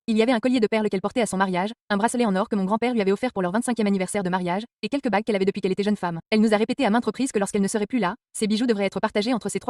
Il y avait un collier de perles qu'elle portait à son mariage, un bracelet en or que mon grand-père lui avait offert pour leur 25e anniversaire de mariage, et quelques bagues qu'elle avait depuis qu'elle était jeune femme. Elle nous a répété à maintes reprises que lorsqu'elle ne serait plus là, ces bijoux devraient être partagés entre ses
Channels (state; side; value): identical; both; correlation 1.00